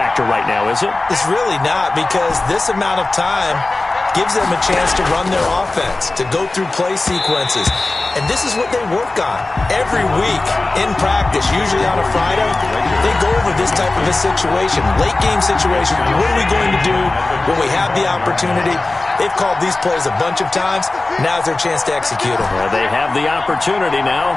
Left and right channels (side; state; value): right; quieter; 3.1 dB